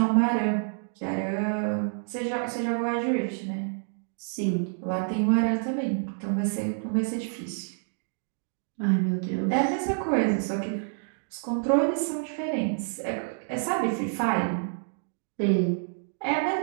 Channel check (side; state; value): left; silent; digital silence